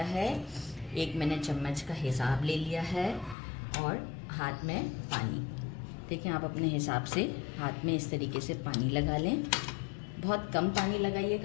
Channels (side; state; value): right; drops out; at 3.4 s